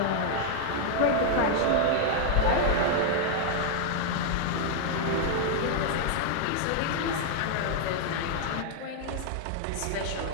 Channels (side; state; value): both; different; correlation 0.00